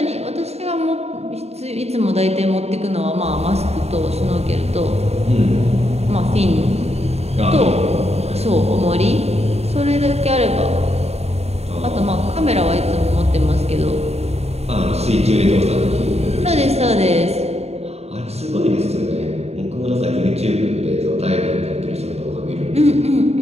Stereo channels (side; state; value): left; late; 0.30 ms